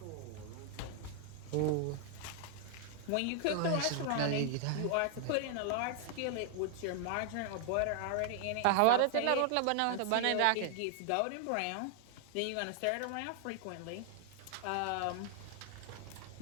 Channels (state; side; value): different; both; correlation 0.00